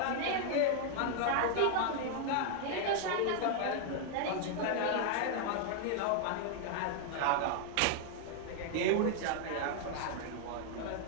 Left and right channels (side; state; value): both; different; correlation 0.00